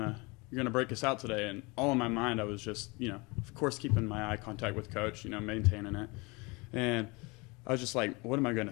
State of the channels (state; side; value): quieter; right; 26.7 dB